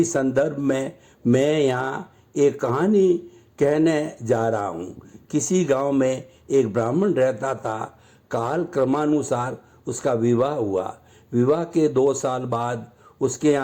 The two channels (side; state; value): both; identical; correlation 1.00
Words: संदर्भ में मैं यहाँ एक कहानी कहने जा रहा हूँ। किसी गांव में एक ब्राह्मण रहता था। काल क्रमानुसार उसका विवाह हुआ। विवाह के 2 साल बाद उसके